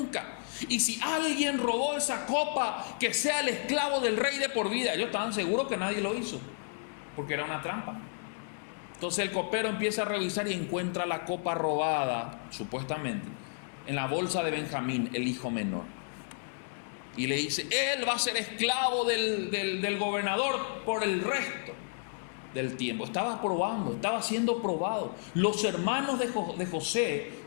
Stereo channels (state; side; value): silent; right; digital silence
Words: Y si alguien robó esa copa, que sea el esclavo del rey de por vida. Ellos estaban seguros que nadie lo hizo, porque era una trampa. Entonces el copero empieza a revisar y encuentra la copa robada, supuestamente, en la bolsa de Benjamín, el hijo menor. Y le dice: él va a ser esclavo del gobernador por el resto del tiempo. Estaba probando, estaba siendo probado. Los hermanos de José